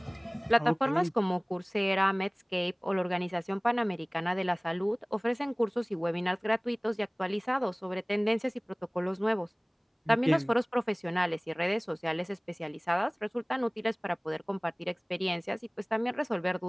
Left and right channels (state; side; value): identical; both; correlation 1.00